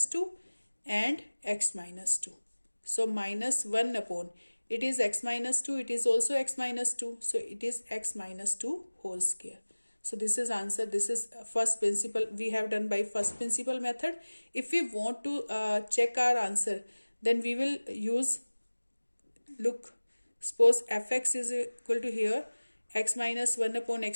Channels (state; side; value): inverted; both; correlation -1.00